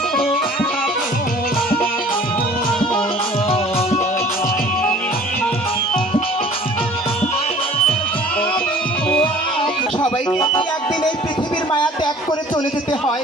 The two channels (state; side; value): normal; both; correlation 0.49